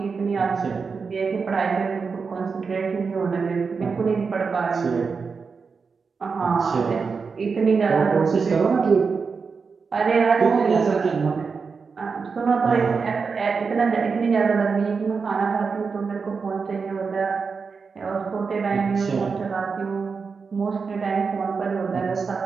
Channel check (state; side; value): quieter; left; 5.1 dB